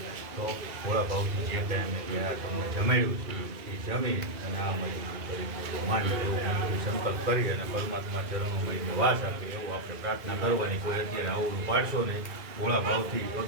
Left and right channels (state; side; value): late; left; 2.5 ms